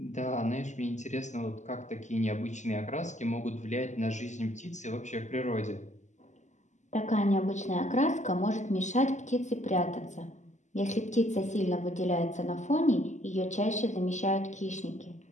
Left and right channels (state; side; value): late; right; 0.34 ms